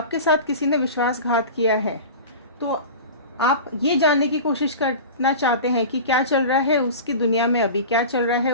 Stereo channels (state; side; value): inverted; both; correlation -0.33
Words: साथ किसी ने विश्वासघात किया है, तो आप ये जानने की कोशिश करना चाहते हैं कि क्या चल रहा है उसकी दुनिया में अभी, क्या चल रहा है